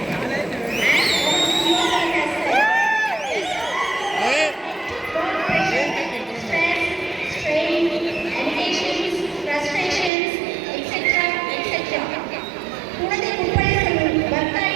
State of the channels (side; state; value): left; drops out; at 10.1 s